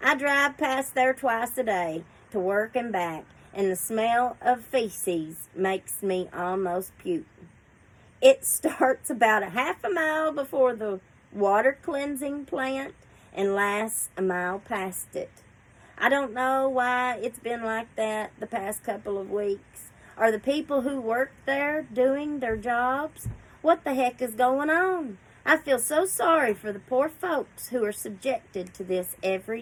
I drive past there twice a day to work and back, and the smell of feces makes me almost puke. It starts about a half a mile before the water cleansing plant and lasts a mile past it. I don't know why it's been like that the past couple of weeks. Are the people who work there doing their jobs? What the heck is going on? I feel so sorry for the poor folks who are subjected to this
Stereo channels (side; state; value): both; identical; correlation 1.00